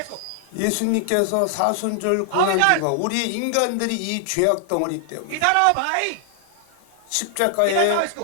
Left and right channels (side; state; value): both; different; correlation 0.00